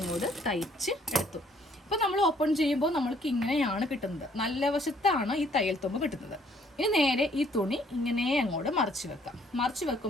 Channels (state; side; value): normal; both; correlation 0.63